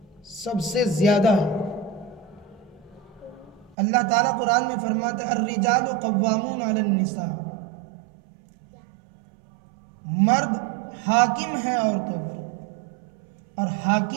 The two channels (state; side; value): drops out; left; at 3.8 s